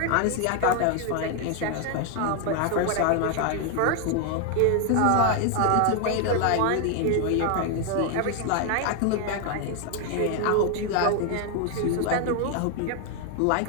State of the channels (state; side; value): different; both; correlation 0.01